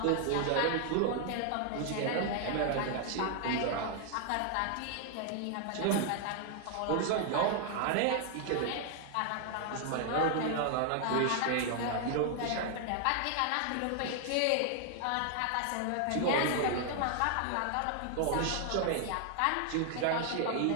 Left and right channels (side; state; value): both; different; correlation 0.00